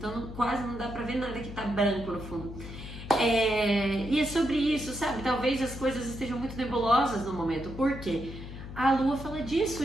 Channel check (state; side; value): noise; left; hum, 11 dB below the sound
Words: quase não dá pra ver nada que tá branco no fundo. E é sobre isso, sabe? Talvez as coisas estejam muito nebulosas no momento. Por quê? A lua fala